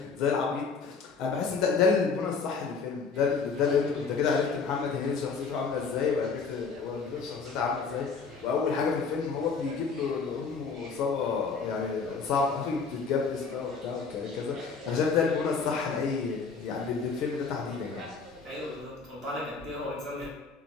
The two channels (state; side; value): quieter; right; 5.1 dB